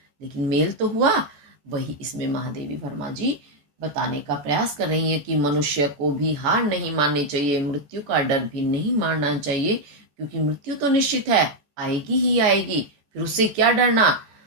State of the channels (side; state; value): left; late; 14 ms